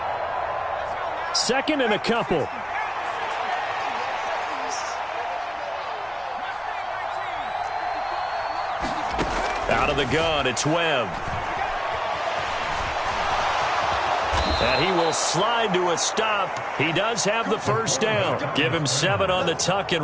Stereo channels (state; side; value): identical; both; correlation 1.00